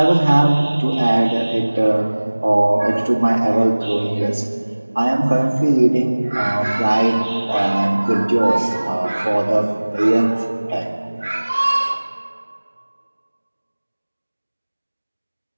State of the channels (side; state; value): both; inverted; correlation -1.00